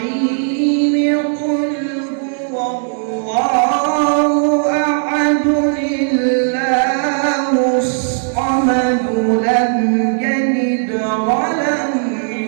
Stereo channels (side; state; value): left; silent; digital silence